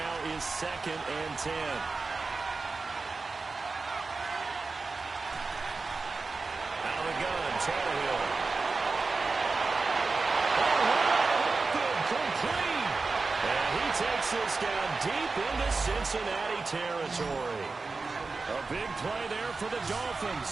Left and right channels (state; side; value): quieter; left; 4.0 dB